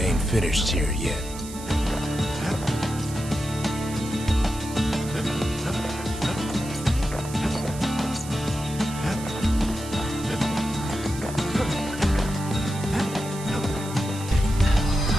finished here yet.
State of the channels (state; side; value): noise; right; hiss, 14 dB below the sound